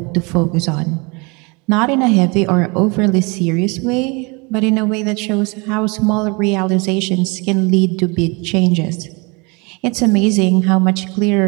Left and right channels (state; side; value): quieter; left; 29.1 dB